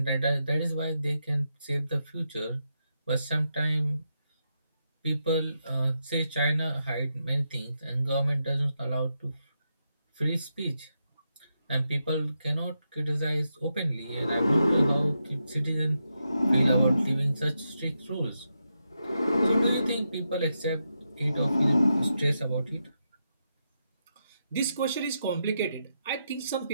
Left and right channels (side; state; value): both; inverted; correlation -0.85